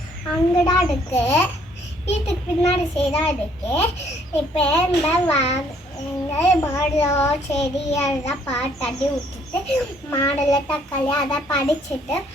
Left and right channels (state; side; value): normal; both; correlation 0.64